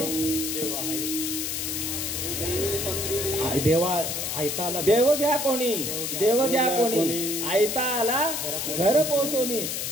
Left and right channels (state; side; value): noise; left; hiss, 2 dB below the sound